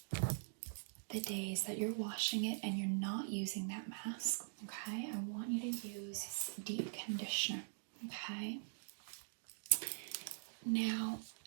the days that you're washing it and you're not using that mask, okay, I want you to use deep conditioner, okay? Now,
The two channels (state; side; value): silent; left; digital silence